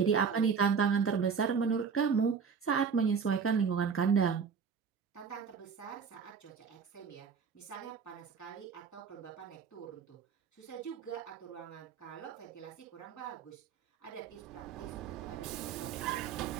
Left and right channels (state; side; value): quieter; left; 6.2 dB